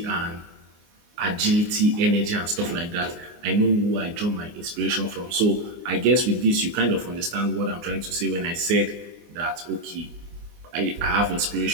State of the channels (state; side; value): late; left; 24 ms